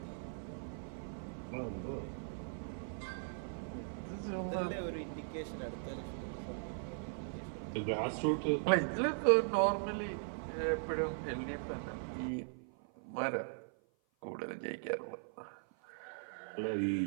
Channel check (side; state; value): left; silent; 52 dB below the other